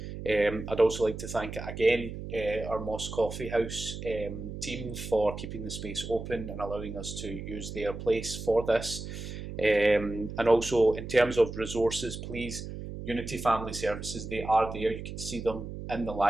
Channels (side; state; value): right; noise; hum, 9 dB below the sound